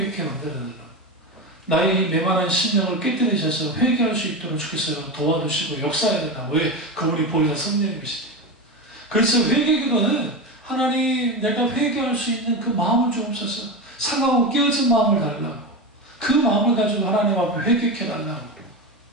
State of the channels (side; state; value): both; normal; correlation 0.20